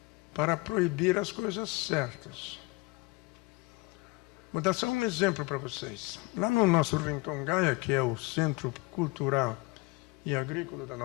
para proibir as coisas certas. Vou dar só um exemplo para vocês. Lá no nosso Rincon Gaia, que é o centro cultural e agrícola da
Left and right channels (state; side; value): quieter; right; 24.7 dB